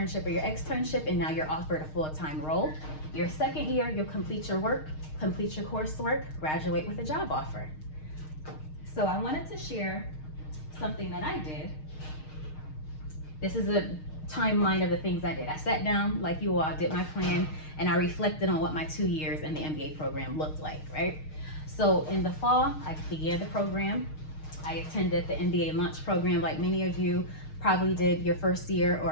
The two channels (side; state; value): right; late; 6.5 ms